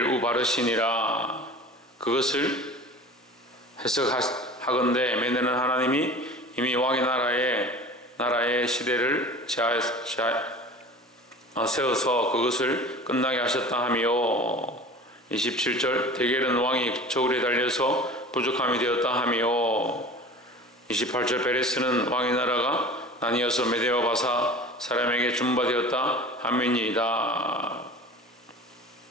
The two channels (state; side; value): normal; both; correlation 0.39